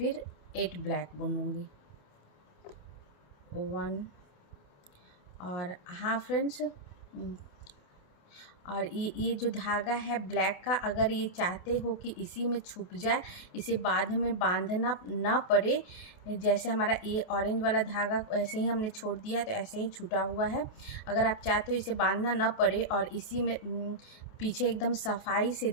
8 ब्लैक बुनूंगी, 1। और हाँ फ्रेंड्स, और ये जो धागा है ब्लैक का, अगर ये चाहते हो कि इसी में छुप जाए, इसे बाद में बांधना ना पड़े, जैसे हमारा ये ऑरेंज वाला धागा ऐसे ही हमने छोड़ दिया तो ऐसे ही छूटा हुआ है। अगर आप चाहते हो इसे बांधना ना पड़े और इसी में पीछे एकदम सफाई से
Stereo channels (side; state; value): right; late; 28 ms